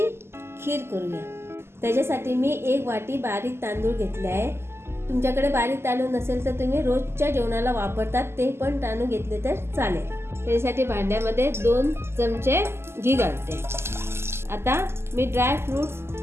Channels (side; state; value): left; late; 0.12 ms